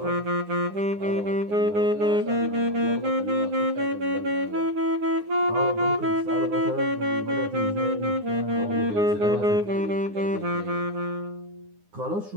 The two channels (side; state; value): left; late; 9.8 ms